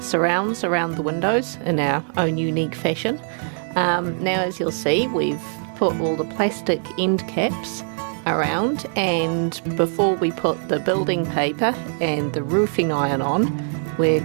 around the windows in our own unique fashion. Now as you'll see, we've put all the plastic end caps around, and before we put the building paper and the roofing iron on, we're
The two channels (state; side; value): silent; left; 58 dB below the other